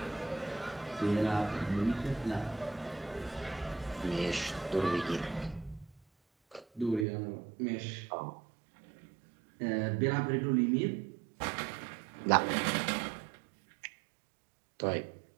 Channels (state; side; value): drops out; left; at 7.1 s